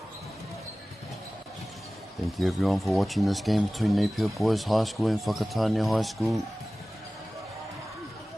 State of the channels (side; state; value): both; normal; correlation 0.97